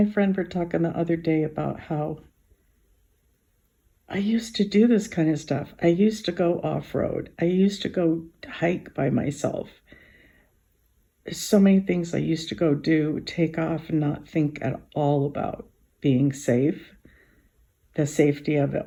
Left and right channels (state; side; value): identical; both; correlation 1.00